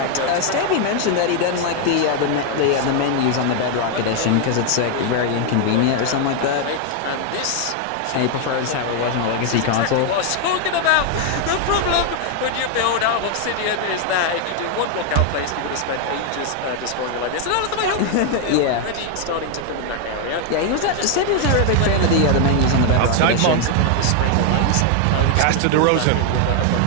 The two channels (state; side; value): different; both; correlation 0.01